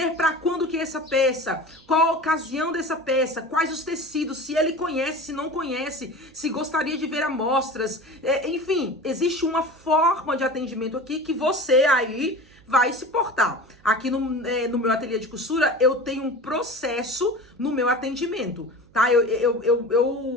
para quando que é essa peça, qual a ocasião dessa peça, quais os tecidos, se ele conhece, se não conhece, se gostaria de ver amostras, enfim, existe uma forma de atendimento aqui que você aí vai se portar. Aqui no meu ateliê de costura, eu tenho um processo no meu atendimento, tá?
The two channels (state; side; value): noise; right; hum, 28 dB below the sound